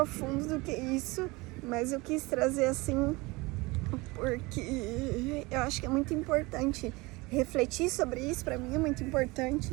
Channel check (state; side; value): quieter; left; 23.7 dB